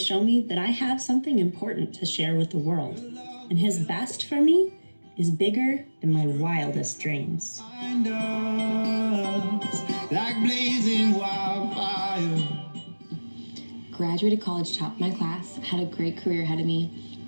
me that I have something important to share with the world, and His best for me is bigger than my wildest dreams. Like blazing wildfire. Graduated college top of my class, had a great career ahead of me,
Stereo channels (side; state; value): both; inverted; correlation -1.00